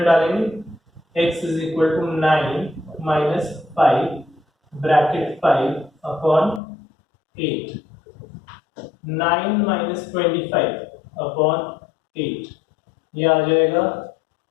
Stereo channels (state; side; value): drops out; right; at 6.6 s